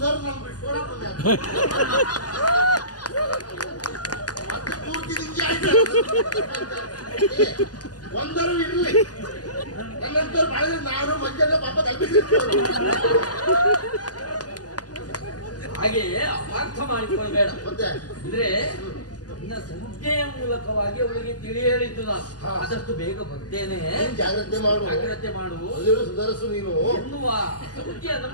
ನಮ್ ಬಿಟ್ಕೊಡಕ್ ಬಂದೆ. ಮತ್ತೆ ಪೂರ್ತಿ ನಿಂಗೆ ಆಯ್ತು. ಒಂದರು ಇರ್ಲಿ, ನನ್ನಂತರ ಮಾಡಿದ್ರೆ ನಾನು ಮಂಜೆಲ್ಲ ಪಾಪ ತಲುಪಿಸಿರ್ತೀವಿ. ಹಾಗೆ ಅಪಾರ್ಥ ಮಾಡಿಕೊಳ್ಬೇಡ. ಮತ್ತೆ ಅಂದ್ರೆ ನಿನ್ನ ಸಂಜ್ಞೆಯ ಮೂಲಕವಾಗಿ ಅವಳಿಗೆ ತಿಳಿ ಹೇಳಿದ್ದು ನಾನು. ಆದಷ್ಟು ಬೇಗ ಬರ್ತೇನೆ, ನೀನು ಜಾಗ್ರತೆ ಮಾಡು, ಜಾಗ್ರತೆ ಮಾಡು ಅಲ್ಲಿರೋ ಸುಧಾರಿಸು ನೀನು ಎನ್ನುವ ಸೂಚಿಯನ್ನು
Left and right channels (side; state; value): right; late; 0.68 ms